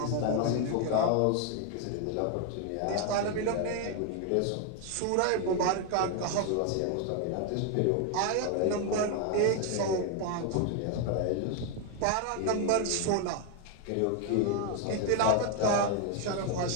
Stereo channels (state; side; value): different; both; correlation 0.01